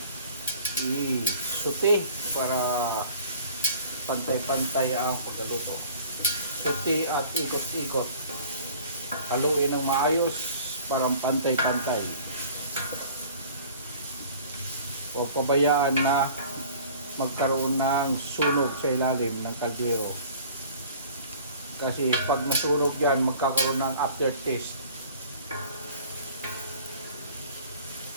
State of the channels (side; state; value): both; inverted; correlation -0.48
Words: i-sauté para pantay-pantay ang pagkaluto. Sauté at ikot-ikot. Haluin ng maayos para pantay-pantay. Huwag pabayaan na magkaroon ng sunog sa ilalim ng kaldero. Kasi pag nasunog yan, magkakaroon ng aftertaste.